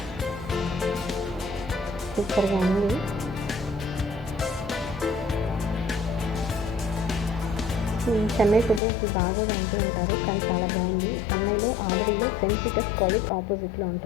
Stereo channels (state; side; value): drops out; right; at 8.8 s